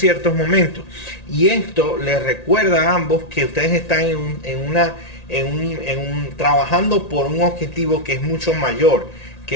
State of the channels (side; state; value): right; late; 1.9 ms